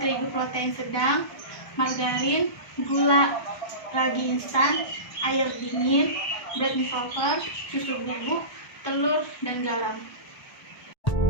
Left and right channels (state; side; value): late; right; 1.2 ms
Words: protein sedang, margarin, gula, ragi instan, air dingin, bread dissolver, susu bubuk, telur, dan garam.